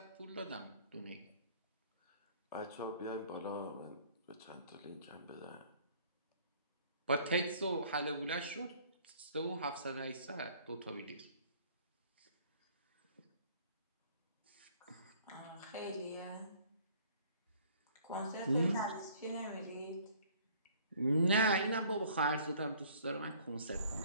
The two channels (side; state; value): both; inverted; correlation -0.56